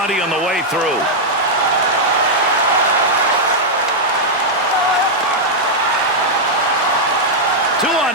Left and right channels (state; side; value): normal; both; correlation -0.04